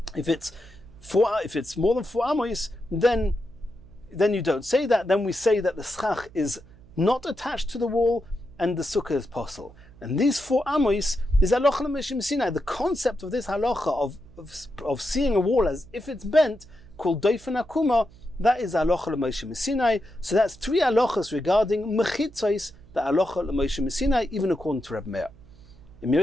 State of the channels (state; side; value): noise; right; hum, 23 dB below the sound